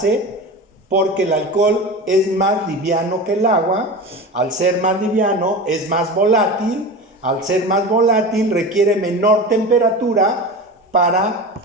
porque el alcohol es más liviano que el agua. Al ser más liviano es más volátil. Al ser más volátil requiere menor temperatura para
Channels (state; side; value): normal; both; correlation 0.29